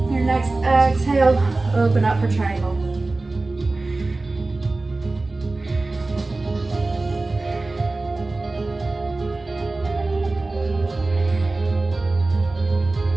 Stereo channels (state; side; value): quieter; left; 3.2 dB